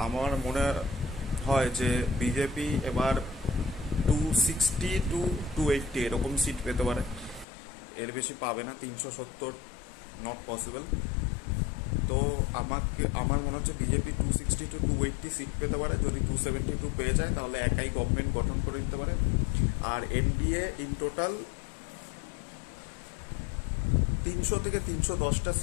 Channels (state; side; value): drops out; right; at 7.5 s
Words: আমার মনে হয় যে বিজেপি এবার 260 টু 280 এরকম সিট পেতে পারে, এর বেশি পাবে না। 370 নট পসিবল। তো আমার মনে হচ্ছে বিজেপি 260 টু 280 সিট পেতে পারে। যদি 272 পেয়ে যায় তাহলে একাই গভর্নমেন্ট গঠন করে দিতে পারে। আর এনডিএ ইন টোটাল 300 থেকে 310টা